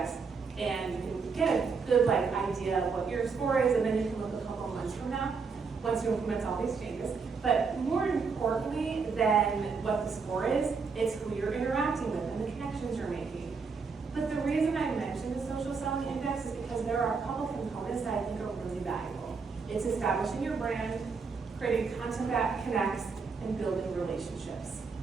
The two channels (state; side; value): quieter; left; 5.0 dB